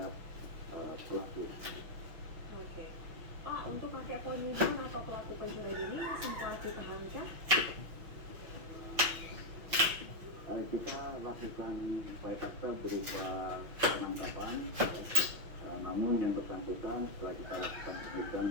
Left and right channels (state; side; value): late; left; 5.8 ms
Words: pelaku. Oke. Pak, untuk kakek penipuan atau pelaku pencurian ini sempat ditahankah? Kita lakukan upaya paksa berupa penangkapan, namun yang bersangkutan setelah kita lakukan